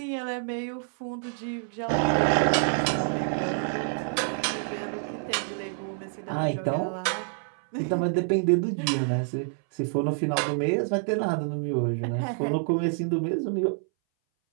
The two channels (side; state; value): left; silent; 59 dB below the other